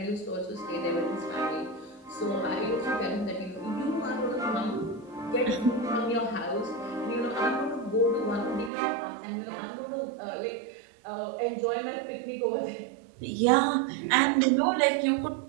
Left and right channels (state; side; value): drops out; left; at 8.7 s